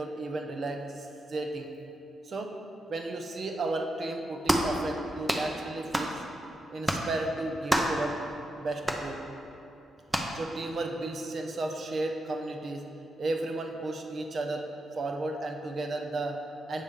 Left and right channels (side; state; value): both; normal; correlation 0.86